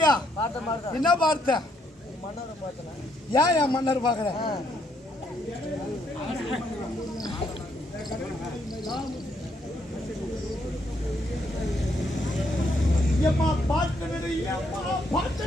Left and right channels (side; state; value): both; normal; correlation 0.73